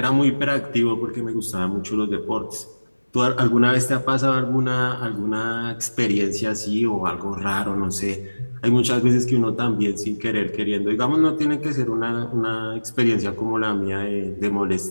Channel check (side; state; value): both; inverted; correlation -1.00